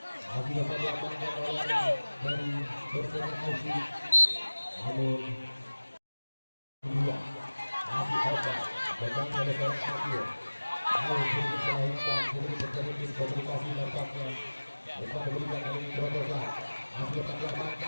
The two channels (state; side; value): inverted; both; correlation -1.00